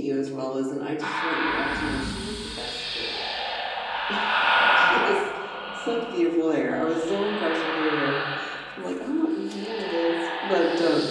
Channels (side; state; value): both; identical; correlation 1.00